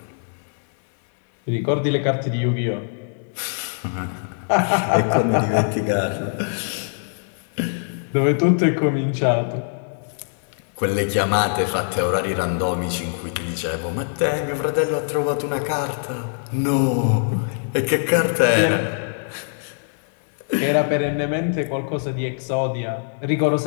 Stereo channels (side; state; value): right; silent; 64 dB below the other